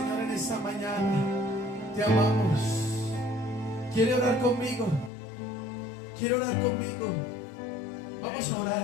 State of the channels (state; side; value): drops out; right; at 5.1 s